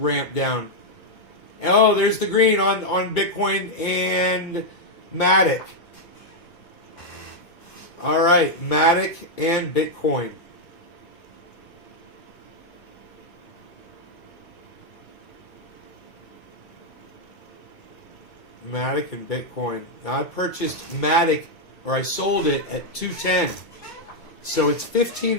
down. Oh, there's the green on Bitcoin and Matic. All right, Matic and Bitcoin. Matic and Bitcoin. Now I purchased Matic, or I sold it at 210. So it's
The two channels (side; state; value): right; late; 2.2 ms